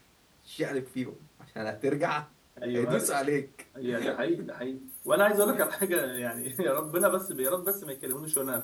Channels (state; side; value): identical; both; correlation 1.00